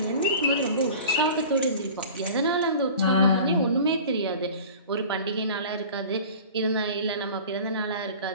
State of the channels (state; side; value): inverted; both; correlation -0.41